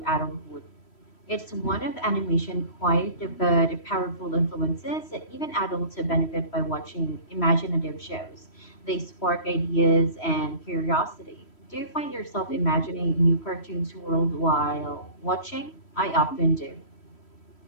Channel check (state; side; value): late; right; 3.1 ms